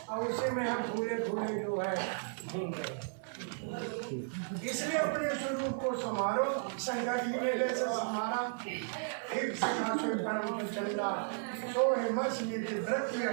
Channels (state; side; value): silent; left; 55 dB below the other